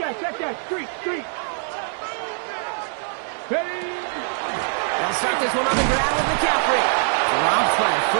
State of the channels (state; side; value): silent; left; 62 dB below the other